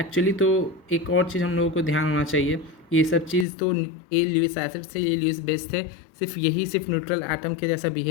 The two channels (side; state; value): right; drops out; at 3.5 s